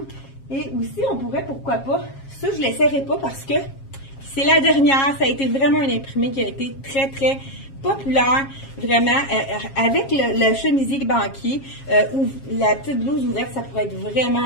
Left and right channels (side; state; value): right; late; 7.4 ms